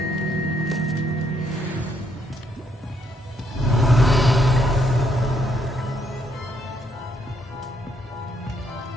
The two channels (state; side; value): normal; both; correlation 0.72